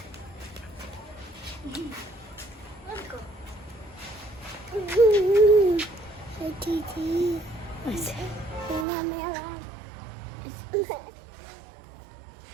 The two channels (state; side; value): drops out; left; at 8.8 s